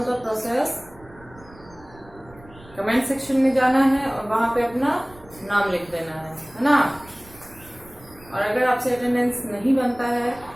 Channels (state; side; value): noise; right; rumble, 23 dB below the sound